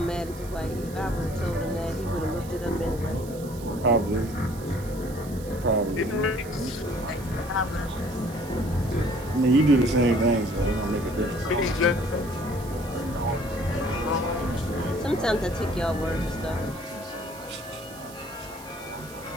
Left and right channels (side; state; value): right; noise; hiss, 18 dB below the sound